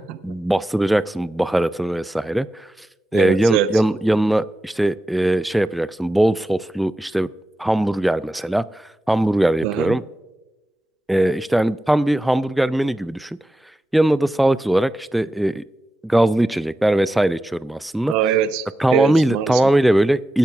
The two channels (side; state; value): both; normal; correlation 0.91